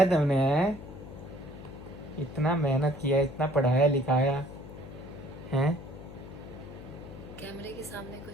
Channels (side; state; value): left; noise; hum, 13 dB below the sound